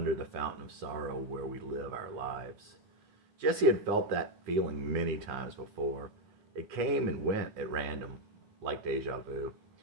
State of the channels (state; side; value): late; left; 10 ms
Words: the fountain of sorrow where we live our lives. Jesse had felt that feeling many times before. It came and went at random, like deja vu.